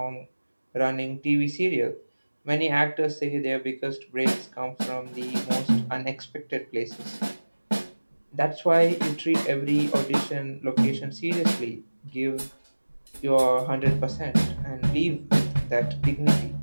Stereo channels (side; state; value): both; inverted; correlation -1.00